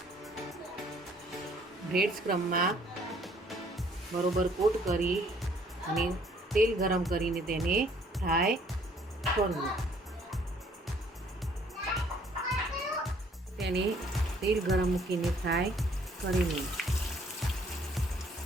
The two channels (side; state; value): both; normal; correlation 0.62